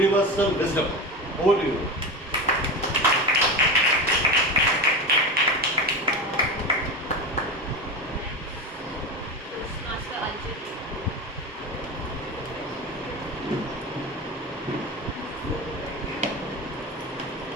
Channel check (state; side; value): normal; both; correlation 0.22